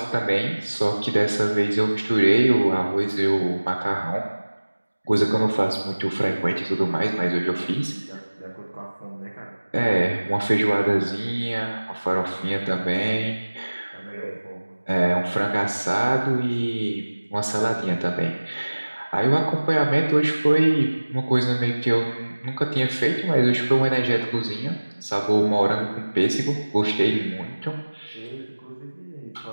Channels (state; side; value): inverted; both; correlation -1.00